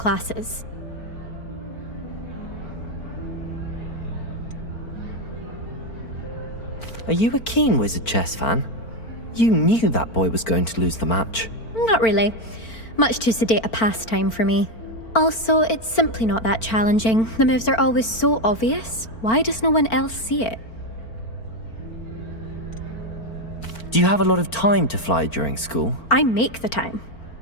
Are you a keen Wizard Chess fan? You knew that boy was going to lose the match. Not really. Much too sedate a pastime for me. Also, it's simply not that challenging. The moves are always so obvious. Why does no one else see it? Do you have a lot of time to fly during school? I make the time.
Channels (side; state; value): right; late; 4.4 ms